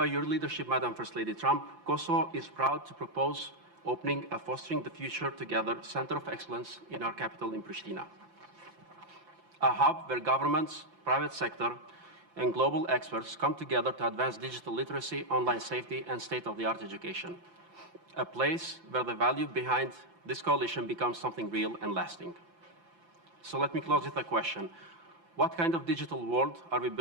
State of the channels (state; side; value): late; left; 5.8 ms